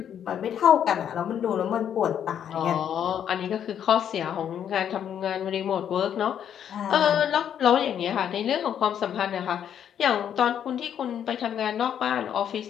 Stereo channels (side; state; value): right; quieter; 9.2 dB